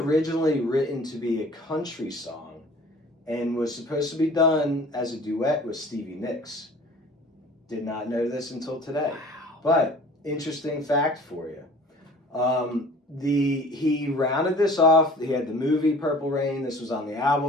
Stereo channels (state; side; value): normal; both; correlation 0.47